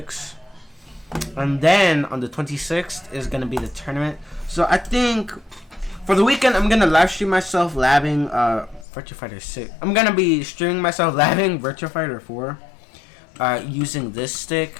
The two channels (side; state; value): right; drops out; at 8.8 s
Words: And then on the 26th is gonna be the tournament. So I think for the weekend I'm gonna live stream myself labbing Virtua Fighter 6. I'm gonna be streaming myself labbing Virtua Fighter 4 using this